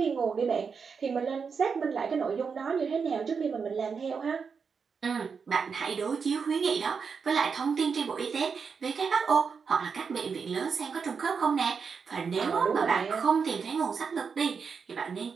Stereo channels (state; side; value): quieter; left; 5.7 dB